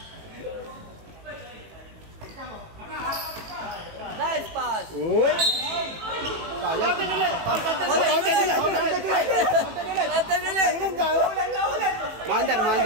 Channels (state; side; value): late; left; 18 ms